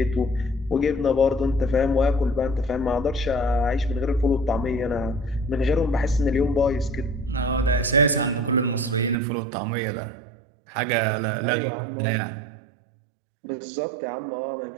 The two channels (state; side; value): drops out; left; at 9.2 s